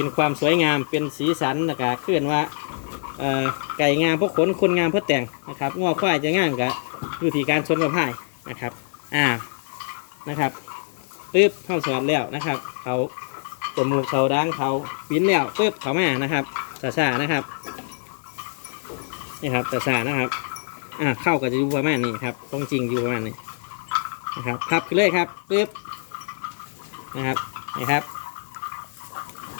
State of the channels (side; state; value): right; silent; digital silence